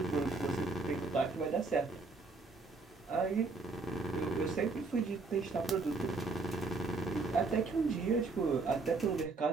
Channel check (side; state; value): left; quieter; 3.9 dB